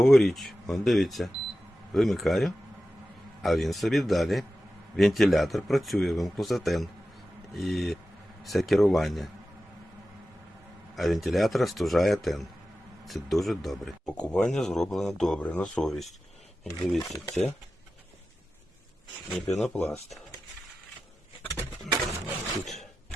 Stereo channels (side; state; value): both; normal; correlation 0.93